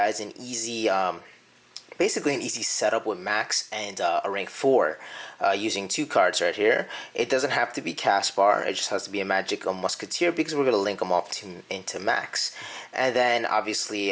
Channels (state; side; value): identical; both; correlation 1.00